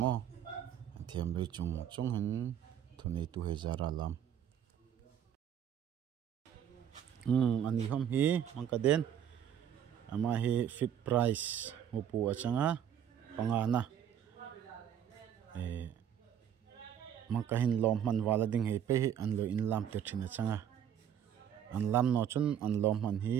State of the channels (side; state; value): left; quieter; 9.4 dB